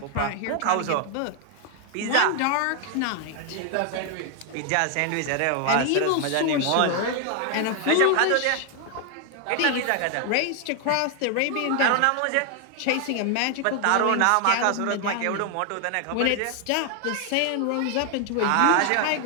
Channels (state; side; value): different; both; correlation 0.00